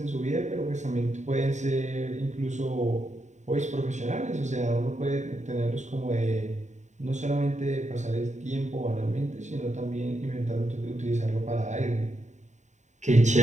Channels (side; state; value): left; late; 0.34 ms